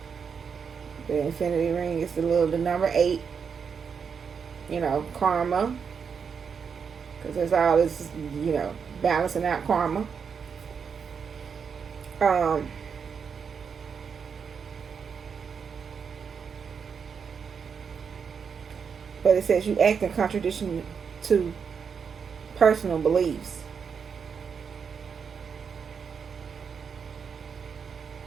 the infinity ring is the number 8. Karma, because there's all this, balancing out karma. But it says you act in contradiction to personal beliefs.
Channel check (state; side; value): quieter; left; 6.4 dB